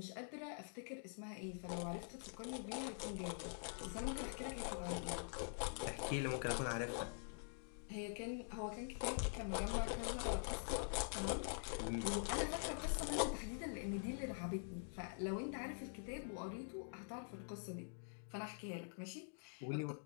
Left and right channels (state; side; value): silent; right; digital silence